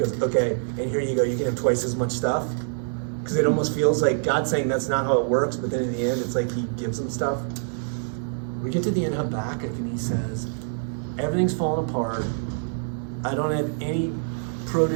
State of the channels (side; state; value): left; silent; 61 dB below the other